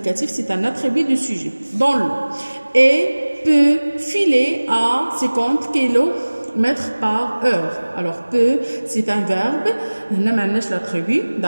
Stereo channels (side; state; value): both; inverted; correlation -1.00